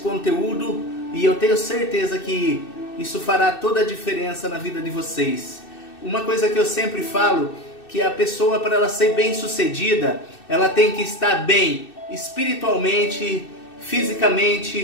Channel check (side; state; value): right; late; 2.6 ms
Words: E eu tenho certeza que isso fará toda a diferença na vida de vocês. Uma coisa que eu sempre falo, que a pessoa, para ela ser bem sucedida, ela tem que estar bem espiritualmente,